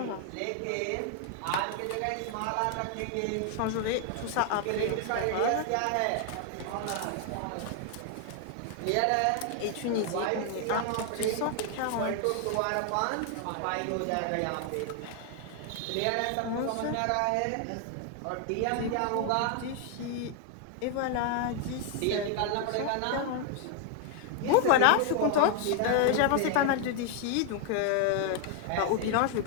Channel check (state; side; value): different; both; correlation 0.00